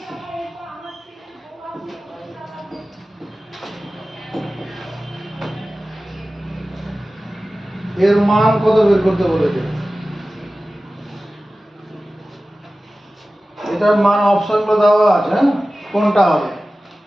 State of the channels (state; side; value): normal; both; correlation 0.96